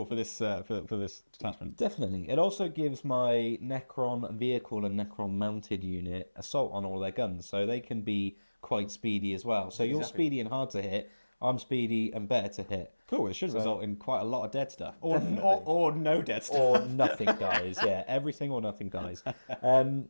for this for this detachment. Definitely. It also gives my Necron vehicle and Necron mounted unit assault on all their guns. So they can be quite speedy as well. So you're Exactly. speedy and hard to hit. I'm speedy and better to hit. Cool. It should result in quite a lot of dead stuff, or Definitely. no dead stuff. Or nothing dies. Yeah, everything or nothing dies.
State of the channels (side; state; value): both; inverted; correlation -1.00